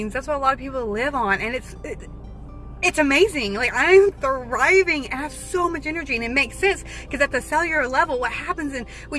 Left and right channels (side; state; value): both; identical; correlation 1.00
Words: that's what a lot of people live on. And it's amazing. Like I'm thriving and I have so much energy, and it makes sense because at the cellular level, what happens when